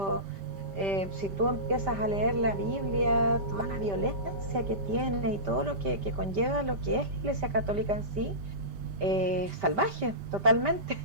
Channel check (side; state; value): left; late; 5.1 ms